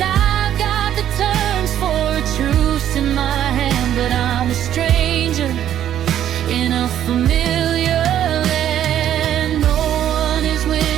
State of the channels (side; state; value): left; quieter; 10.9 dB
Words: got the terms for a truce in my hand, but I'm a stranger in a familiar land. No one is